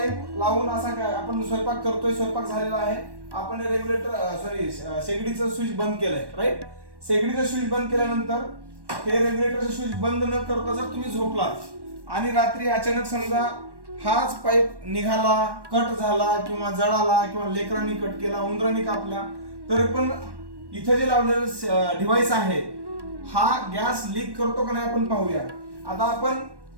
लावून असा काय आपण स्वयंपाक करतोय, स्वयंपाक झालेला आहे, आपण रेग्युलेटर शेगडीचं स्विच बंद केलंय, राईट. शेगडीचं स्विच बंद केल्यानंतर हे रेग्युलेटरचं स्विच बंद न करता जर तुम्ही झोपलात आणि रात्री अचानक समजा हाच पाईप निघाला, कट झाला किंवा जळाला किंवा लेकरांनी कट केला, उंदरांनी कापला, तर पण इथे जे लावलेलं डिव्हाइस आहे हा गॅस लीक करतो का नाही आपण पाहूया. आता आपण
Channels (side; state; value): left; late; 1.1 ms